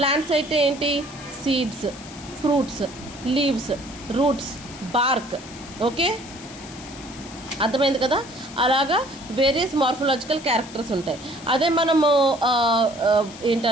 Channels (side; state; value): left; noise; hiss, 17 dB below the sound